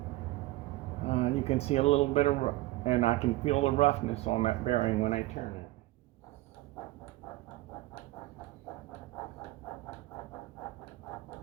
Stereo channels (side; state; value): left; quieter; 18.3 dB